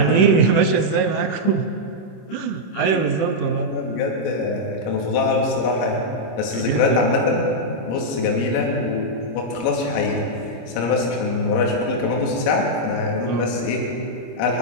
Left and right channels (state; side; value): late; right; 26 ms